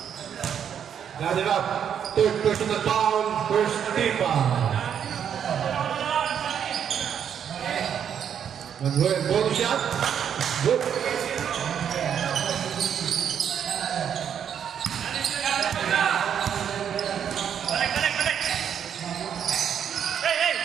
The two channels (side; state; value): left; quieter; 8.5 dB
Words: Got it up. Third personal foul, first team foul. Manuel, bonus shot. Good.